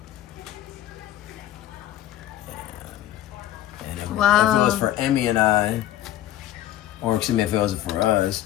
And if it was for Emmy and I, or excuse me, if it was for us,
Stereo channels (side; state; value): right; quieter; 12.9 dB